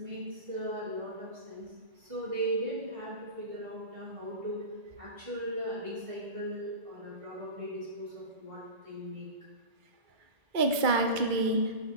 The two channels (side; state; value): left; late; 2.2 ms